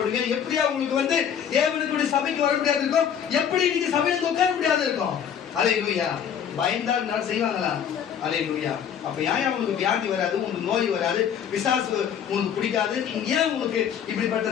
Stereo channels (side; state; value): right; quieter; 8.4 dB